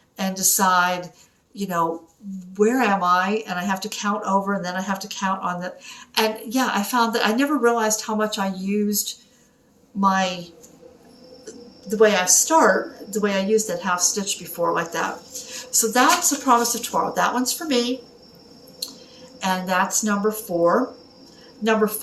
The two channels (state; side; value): identical; both; correlation 1.00